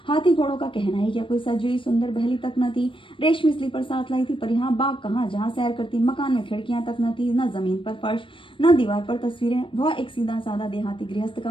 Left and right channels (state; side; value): late; right; 0.25 ms